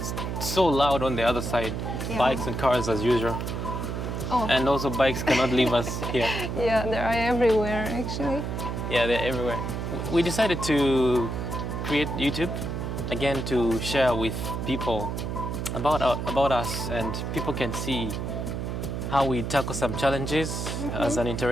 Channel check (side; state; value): right; noise; hum, 3 dB below the sound